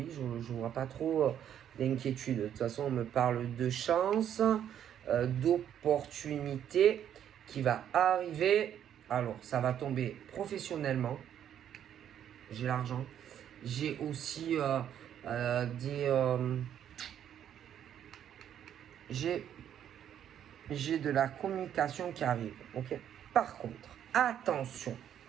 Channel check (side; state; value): left; quieter; 9.9 dB